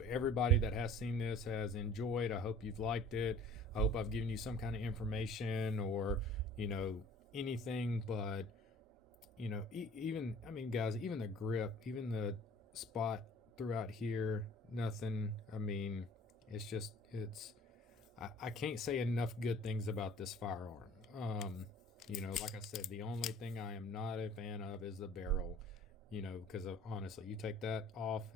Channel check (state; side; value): normal; both; correlation 0.49